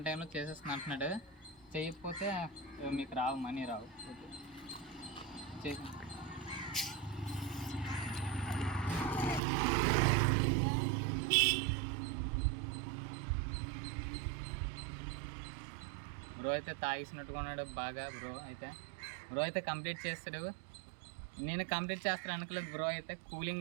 టైంలో చేసేస్తున్నా అంటున్నాడు. చేయకపోతే మీకు రావు, మనీ రావు. ఓకే చేసి బ్రో అయితే తాగేసినట్టుగా ఉన్నాడు బాగా. బ్రో అయితే కంప్లీట్ చేస్తాడు. నేను కంప్లీట్ చేస్తాను అనుకోలేదు. బ్రో అయితే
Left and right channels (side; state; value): left; drops out; at 9.4 s